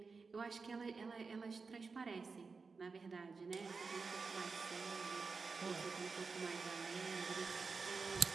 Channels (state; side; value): quieter; left; 4.6 dB